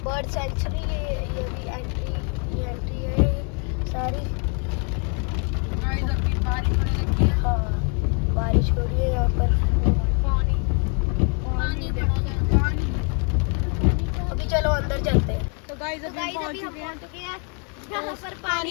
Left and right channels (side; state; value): right; quieter; 38.8 dB